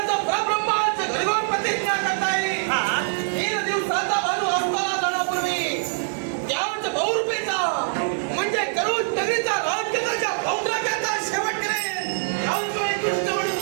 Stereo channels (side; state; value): left; silent; 63 dB below the other